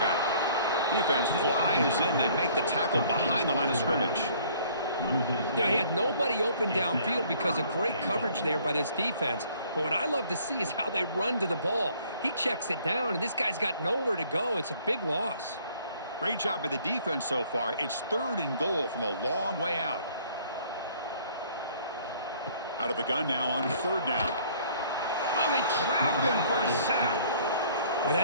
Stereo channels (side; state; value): both; inverted; correlation -0.58